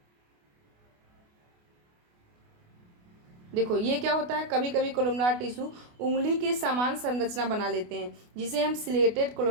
देखो ये क्या होता है, कभी कभी कोलुमनार टिश्यू उंगली के समान संरचना बना लेते हैं जिसे हम सिलेटेड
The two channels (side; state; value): left; late; 28 ms